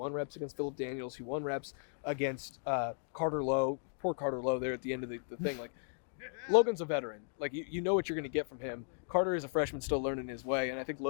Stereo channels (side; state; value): right; silent; digital silence